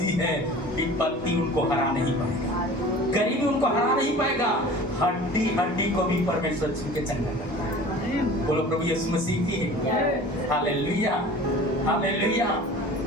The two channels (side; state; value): both; normal; correlation 0.42